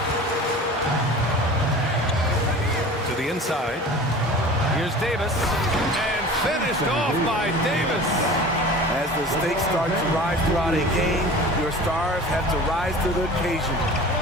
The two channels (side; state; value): both; normal; correlation 0.39